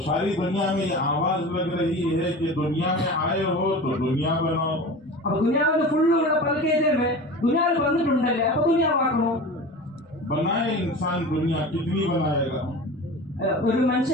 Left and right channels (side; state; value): both; normal; correlation 0.34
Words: सारी दुनिया में ये आवाज लग रही है कि दुनिया में आए हो तो दुनिया बनाओ। അപ്പൊ ദുനിയാവിൽ ഫുള്ളുള്ള പൽക്കേതേ ദുനിയാവിൽ വന്നിട്ടുണ്ടല്ലേ അപ്പൊ ദുനിയാവാക്കണോ? बनाए इंसान दुनिया कितनी बनाएगा? ഒരു